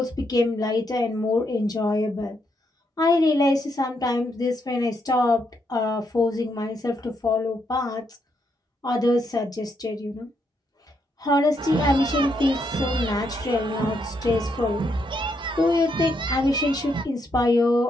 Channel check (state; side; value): normal; both; correlation 0.78